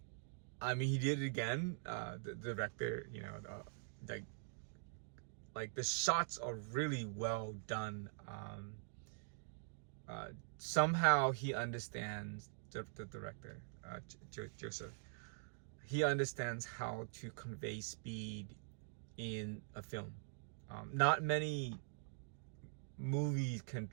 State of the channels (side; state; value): left; silent; digital silence